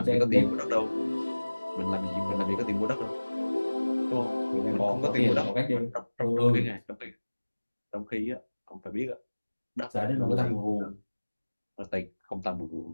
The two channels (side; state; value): both; inverted; correlation -1.00